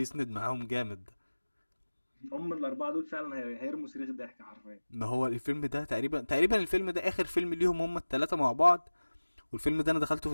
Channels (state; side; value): inverted; both; correlation -1.00